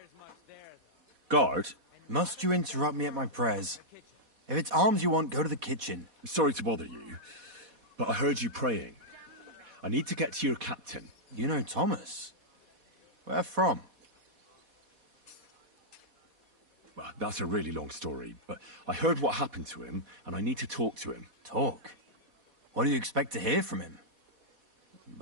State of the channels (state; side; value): late; left; 4.1 ms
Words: much there, though. Guard? Must you interrupt me at my prayers? If it's alms you want, go to the kitchen. Sorry to bother you, but I heard you praying. I need to get to your captain. You know Thomas? Where from? Well, that's a really long story, but I heard what happened to him, and I need to talk to him. Talk? What do you expect to hear from him?